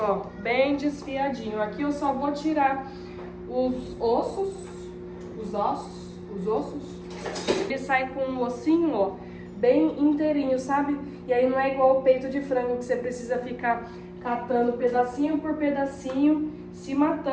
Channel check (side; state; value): both; identical; correlation 1.00